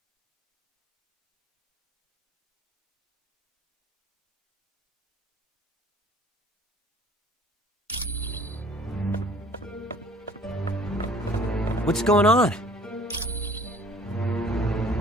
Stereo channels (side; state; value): both; normal; correlation 0.52